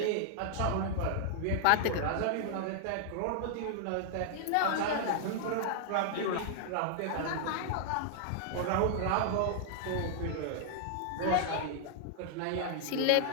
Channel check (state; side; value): different; both; correlation -0.01